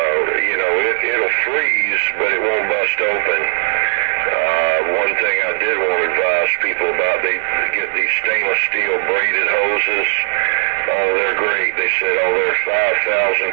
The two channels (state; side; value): silent; left; digital silence